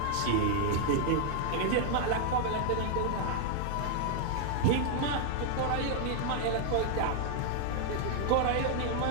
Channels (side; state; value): both; different; correlation 0.00